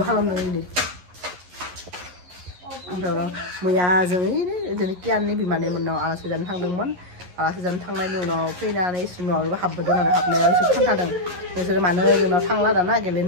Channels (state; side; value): late; left; 11 ms